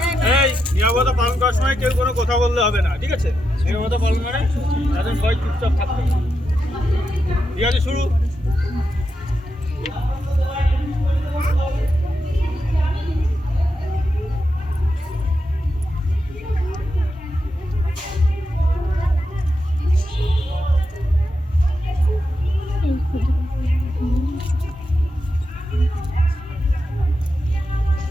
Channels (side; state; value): both; normal; correlation 0.86